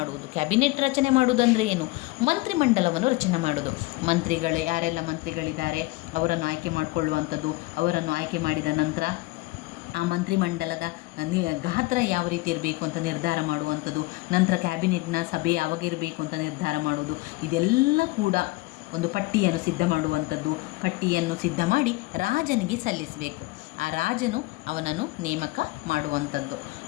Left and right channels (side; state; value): right; quieter; 21.6 dB